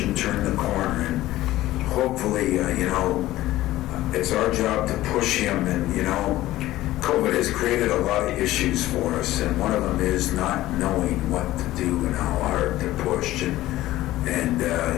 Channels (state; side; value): quieter; right; 15.9 dB